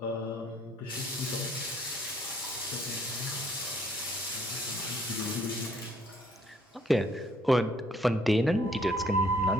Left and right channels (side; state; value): both; normal; correlation 0.63